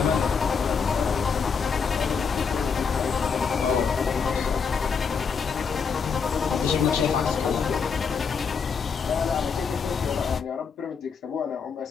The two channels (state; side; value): quieter; right; 5.9 dB